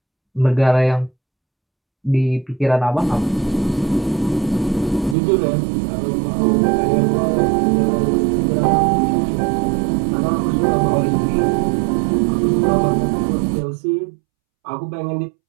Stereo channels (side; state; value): left; drops out; at 5.2 s